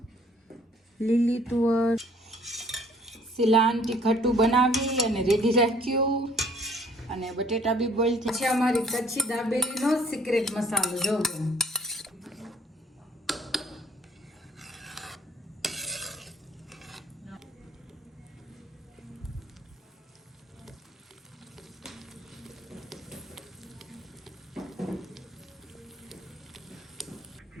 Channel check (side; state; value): both; normal; correlation 0.58